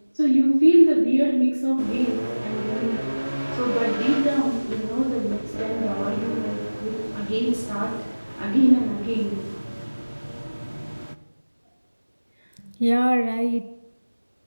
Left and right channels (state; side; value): inverted; both; correlation -1.00